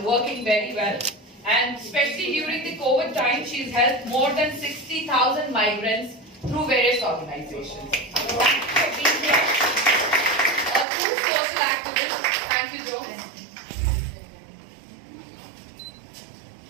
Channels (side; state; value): left; drops out; at 10.9 s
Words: working very well. And especially during the COVID time, she's helped more than 60,000 migrants through various organizations. Thank you for being here. A true social activist. Thank you, Jones.